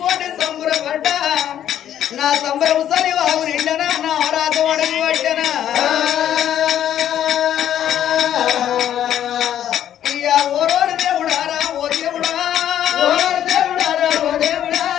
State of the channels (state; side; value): quieter; right; 10.7 dB